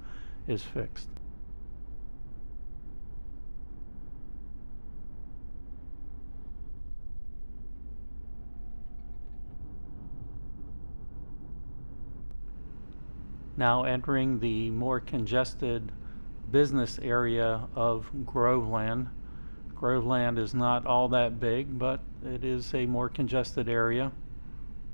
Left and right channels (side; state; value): both; inverted; correlation -1.00